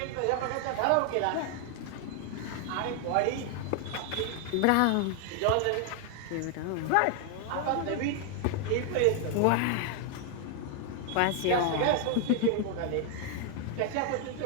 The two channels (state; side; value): different; both; correlation 0.00